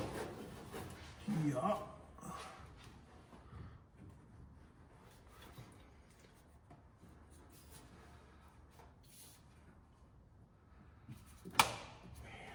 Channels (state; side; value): identical; both; correlation 1.00